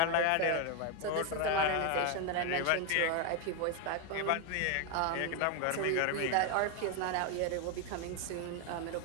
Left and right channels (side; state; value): both; different; correlation 0.01